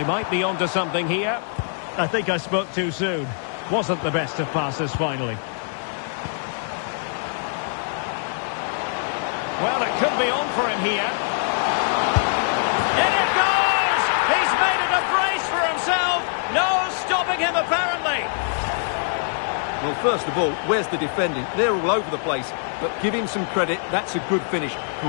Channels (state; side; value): silent; right; digital silence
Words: might be onto something here. I think I spoke too soon. Wasn't the best of passes finally. Well, it could be on for him here. In it goes! He's made it a brace for himself. No stopping him, apparently. Well, first of all, where's the defending? They're all over the place. But give him some credit. That's a good finish.